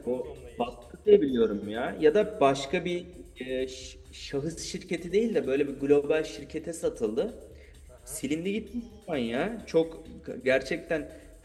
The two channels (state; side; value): identical; both; correlation 1.00